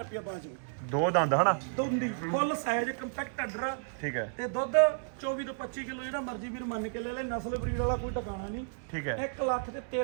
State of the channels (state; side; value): silent; left; digital silence